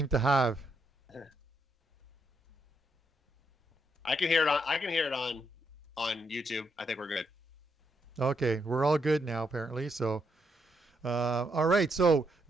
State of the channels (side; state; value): both; normal; correlation 0.78